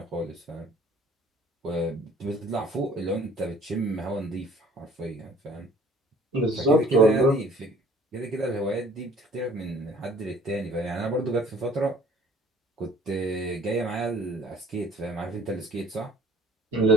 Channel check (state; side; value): normal; both; correlation 0.53